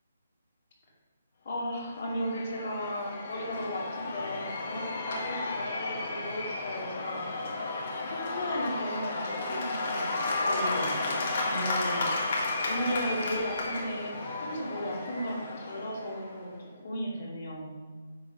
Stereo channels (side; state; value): both; inverted; correlation -0.73